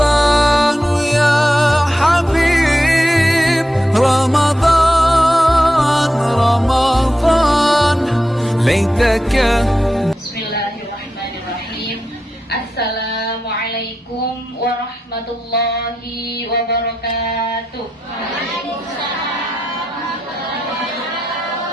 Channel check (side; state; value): both; normal; correlation 0.87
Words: يا حبيب رمضان رمضان ليتك. Bismillahirrahmanirrahim. Assalamualaikum warahmatullahi wabarakatuh.